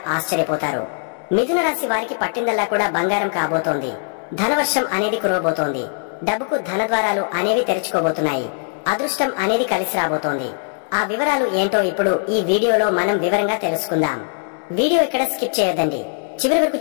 ఆశ్చర్యపోతారు। మిథున రాశి వారికి పట్టిందల్లా కూడా బంగారం కాబోతోంది। ధనవర్షం అనేది కురవబోతోంది। డబ్బుకు ధనద్వారాలు అనేవి తెరుచుకోబోతున్నాయి। అదృష్టం అనేది కలిసి రాబోతోంది। ఆ వివరాలు ఏంటో ఇప్పుడు ఈ వీడియోలో మనం వివరంగా తెలుసుకుందాం। వీడియో ఇక్కడ స్కిప్ చేయొద్దండి। చివరి వరకు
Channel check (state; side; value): silent; right; 58 dB below the other